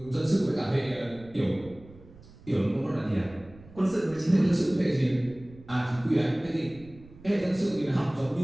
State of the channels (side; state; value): right; noise; rumble, 21 dB below the sound